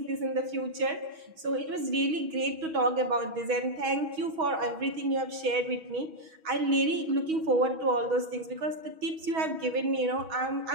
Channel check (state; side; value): late; left; 6.2 ms